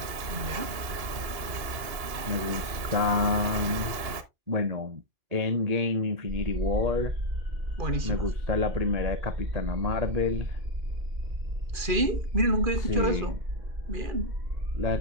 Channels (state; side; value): late; left; 2.8 ms